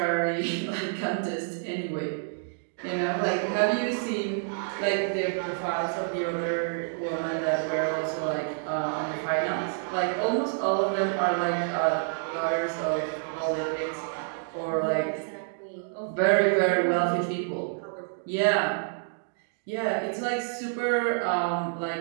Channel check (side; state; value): left; silent; digital silence